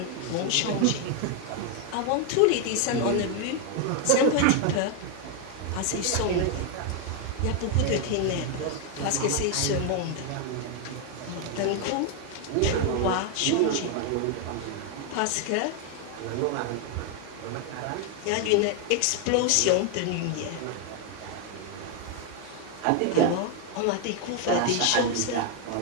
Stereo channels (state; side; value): different; both; correlation 0.01